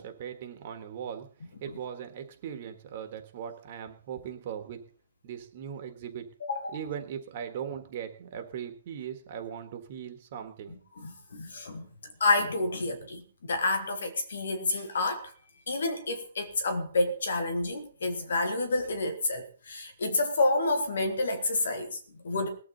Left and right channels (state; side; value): inverted; both; correlation -0.71